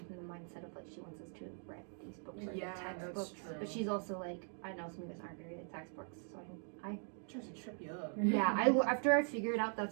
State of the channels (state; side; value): silent; left; 50 dB below the other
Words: from the mindset of like she wants us to have read these books or Yeah, the that's textbooks, true. but she's also like I know some of us aren't gonna read the textbooks, so I Tries to trip you up. yeah after I figured out